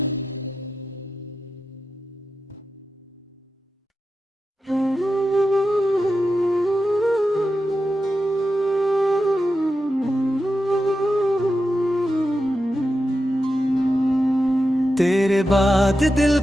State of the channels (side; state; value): both; normal; correlation 0.90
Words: तेरे बाद दिल